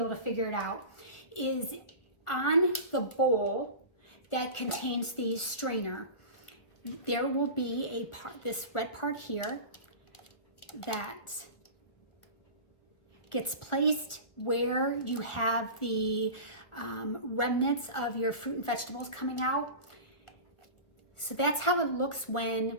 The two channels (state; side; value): late; right; 1.4 ms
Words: to figure it out, is on the bowl that contains the strainer, there will be a part, this red part here, that gets placed where you have the remnants of your fruit and vegetables coming out. So that's how it looks when